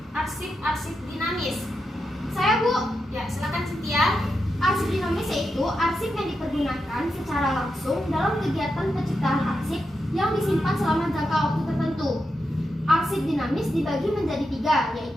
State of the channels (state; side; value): normal; both; correlation 0.87